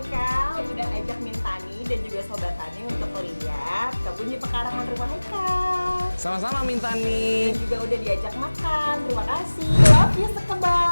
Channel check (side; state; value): both; inverted; correlation -1.00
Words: udah ajak Mintani dan juga Sobat Tani untuk lihat kebun di pekarangan rumah Haikal. Sama-sama Mintani. Dan juga udah diajak makan. Terima kasih. Love you